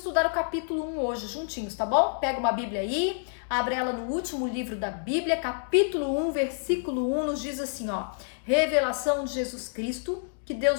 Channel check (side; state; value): right; silent; digital silence